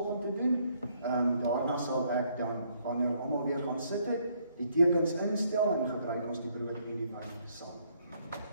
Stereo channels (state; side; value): inverted; both; correlation -0.69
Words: te doen. Daarna sal ek dan, wanneer almal weer gaan sit het, die tekens instel en gebruik ons die brood en die wyn saam.